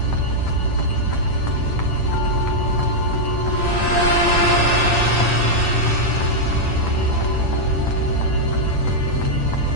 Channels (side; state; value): right; late; 9.0 ms